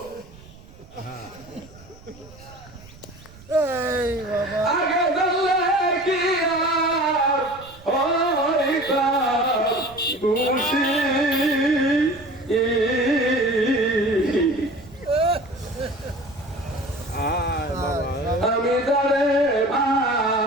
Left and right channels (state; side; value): noise; right; rumble, 22 dB below the sound